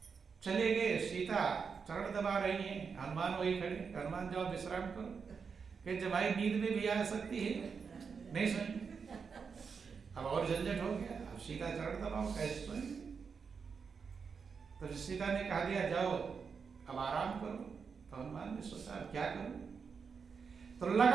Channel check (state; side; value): quieter; left; 5.8 dB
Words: चले गए, सीता चरण दबा रही है, हनुमान वही खड़े, हनुमान जाओ विश्राम करो। कि जमाई नींद में भी आ सकती है, नहीं सुनी। अब और झंझट हो गया, अब सीता चरण दबाओ, कैसे सुनी? तो सीता ने कहा दिया जाओ अब आराम करो। तो हनुमान ने सोचा अब क्या करूं, तो